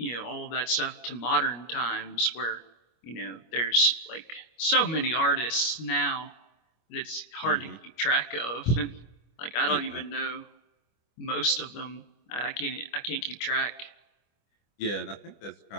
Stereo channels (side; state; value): right; late; 25 ms